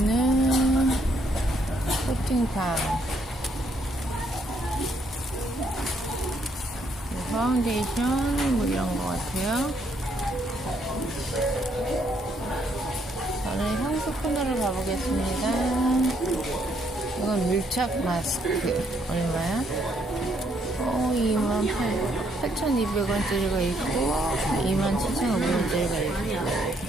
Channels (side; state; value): both; normal; correlation 0.71